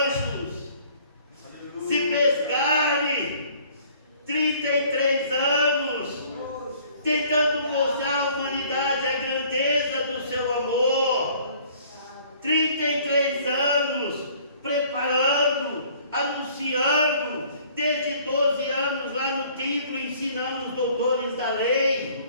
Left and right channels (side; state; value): both; inverted; correlation -0.56